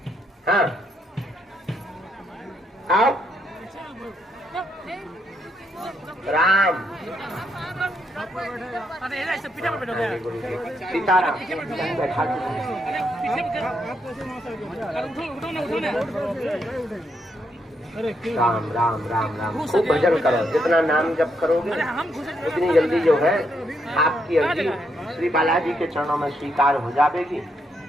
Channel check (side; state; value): both; normal; correlation 0.77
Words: हाँ, आओ। राम सीताराम। राम राम राम राम। खूब भजन करो, जितना नाम जप करोगे उतनी जल्दी जो है आपकी अर्जी श्री बालाजी के चरणों में स्वीकार हो जाएगी।